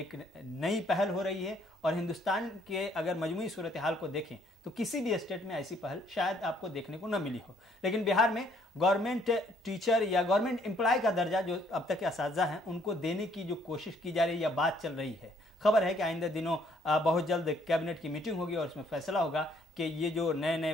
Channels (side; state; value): both; normal; correlation 0.65